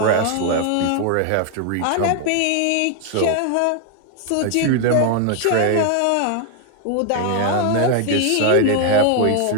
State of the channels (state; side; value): different; both; correlation 0.00